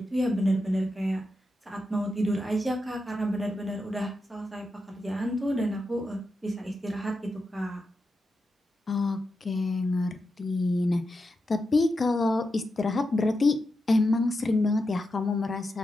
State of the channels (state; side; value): normal; both; correlation 0.88